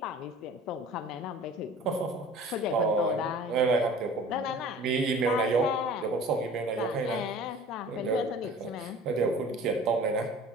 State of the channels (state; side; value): normal; both; correlation 0.44